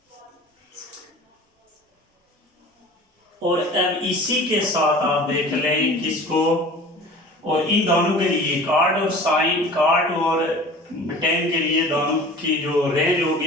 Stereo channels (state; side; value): normal; both; correlation 0.41